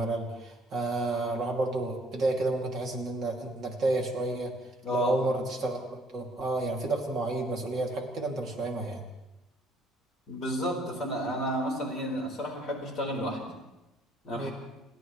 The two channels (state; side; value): normal; both; correlation 0.62